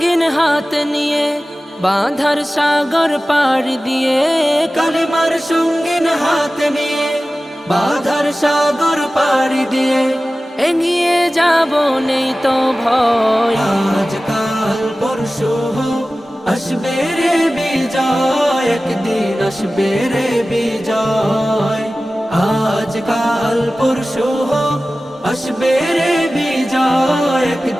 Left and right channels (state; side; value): normal; both; correlation 0.96